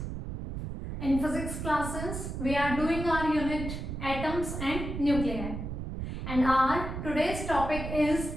in physics classes we are doing our unit atoms and nuclei, and our today's topic is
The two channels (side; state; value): right; noise; rumble, 6 dB below the sound